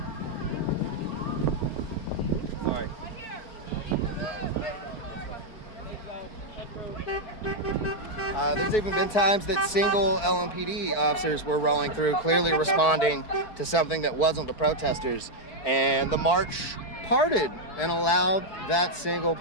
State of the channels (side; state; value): right; late; 4.7 ms